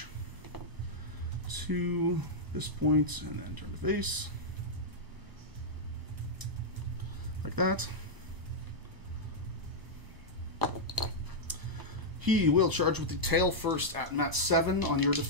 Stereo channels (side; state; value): left; late; 1.0 ms